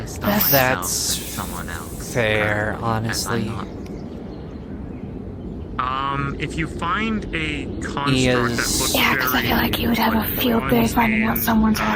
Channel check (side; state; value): both; identical; correlation 1.00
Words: That's fair, honestly. If you find a construct He that is... looks Yeah, because I feel like you would have a field day finding out someone's